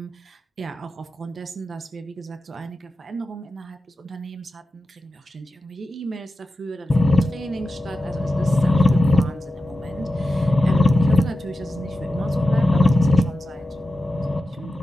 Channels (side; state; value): both; normal; correlation 0.93